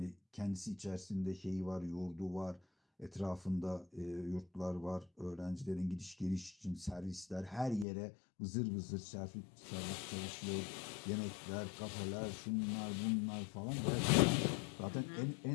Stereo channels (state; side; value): drops out; right; at 7.9 s